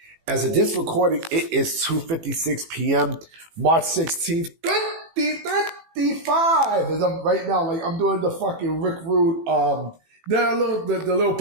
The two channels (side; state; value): left; late; 18 ms